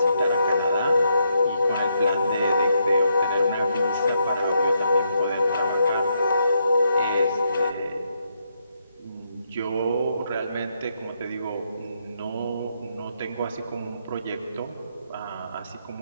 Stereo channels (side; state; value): both; inverted; correlation -0.78